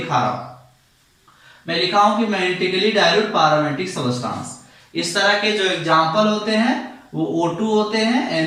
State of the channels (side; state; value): both; identical; correlation 1.00